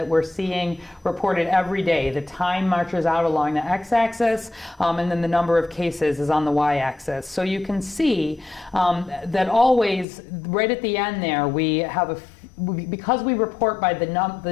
we're seeing reported every day. The time marches out along the x-axis, and then the number of cases is on the y-axis. So you can see that always, right at the end there, we have because we report by the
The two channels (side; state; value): right; drops out; at 10.1 s